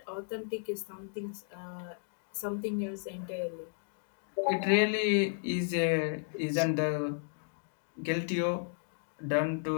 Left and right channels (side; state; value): right; silent; digital silence